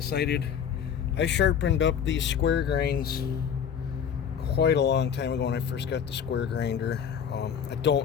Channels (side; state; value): right; quieter; 7.9 dB